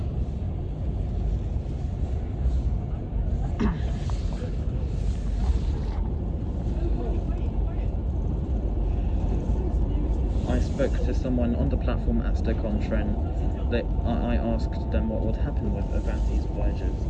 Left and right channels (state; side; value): identical; both; correlation 1.00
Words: I spoke to someone on the platform at Stoke-on-Trent. I asked them what would happen with Avanti's Voyages